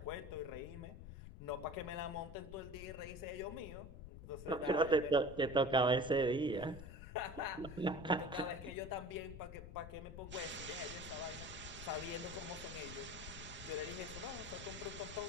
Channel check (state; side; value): noise; left; rumble, 12 dB below the sound